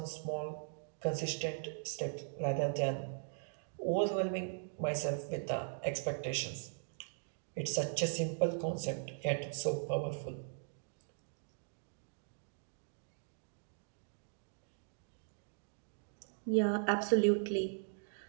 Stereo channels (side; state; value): left; silent; digital silence